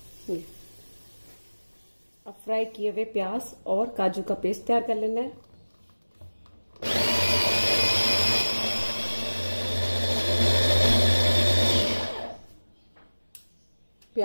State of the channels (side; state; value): both; inverted; correlation -1.00